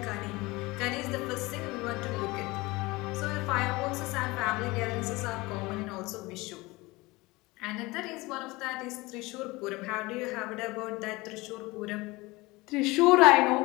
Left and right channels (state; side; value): quieter; right; 22.2 dB